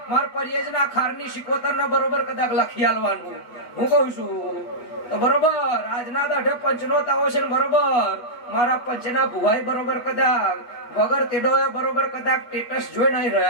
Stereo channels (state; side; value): late; right; 8.3 ms